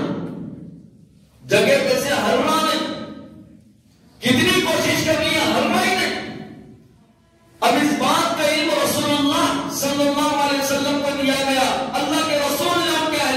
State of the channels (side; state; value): both; identical; correlation 1.00